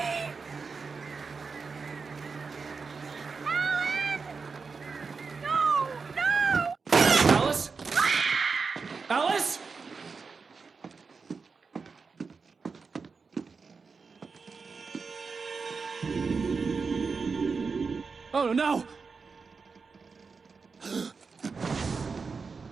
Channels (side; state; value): left; quieter; 4.9 dB